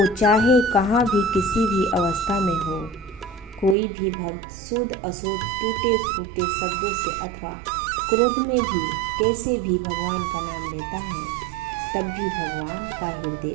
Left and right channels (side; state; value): left; drops out; at 3.8 s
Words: चाहे कहाँ भी किसी भी अवस्था में हो, कोई भी भक्त शुद्ध अशुद्ध टूटे फूटे शब्दों से अथवा क्रोध में भी कैसे भी भगवान का नाम लेता है, तब भी भगवान का हृदय